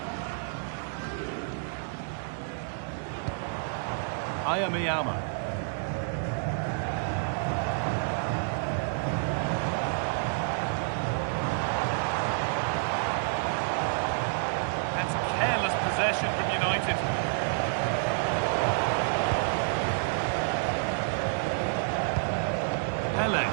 Ayamiyama. That's careless possession from United. Dembele.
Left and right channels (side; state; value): left; silent; 57 dB below the other